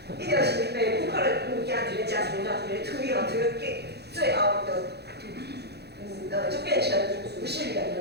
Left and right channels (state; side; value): late; left; 0.48 ms